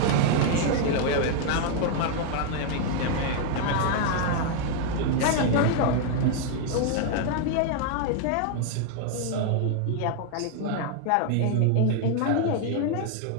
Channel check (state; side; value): different; both; correlation 0.00